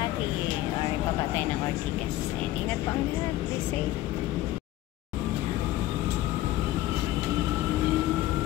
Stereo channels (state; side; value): quieter; right; 15.3 dB